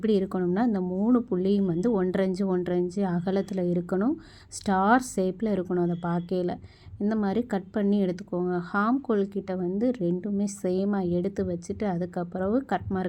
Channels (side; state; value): both; identical; correlation 1.00